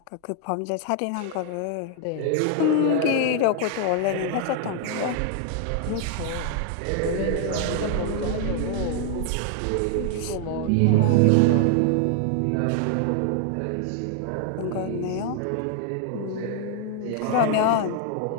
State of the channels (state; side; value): different; both; correlation 0.00